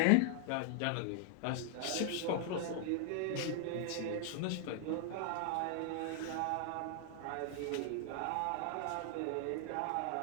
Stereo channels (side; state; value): both; different; correlation 0.00